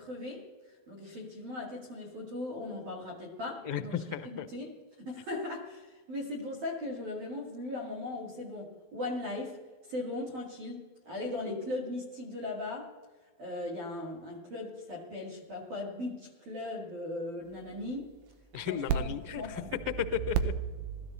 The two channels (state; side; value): late; left; 12 ms